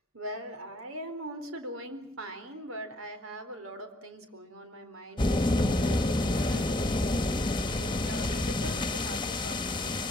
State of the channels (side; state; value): both; normal; correlation 0.66